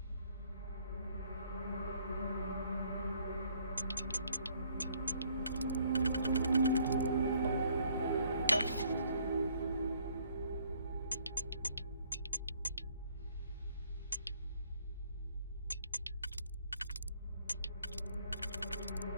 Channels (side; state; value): both; inverted; correlation -0.64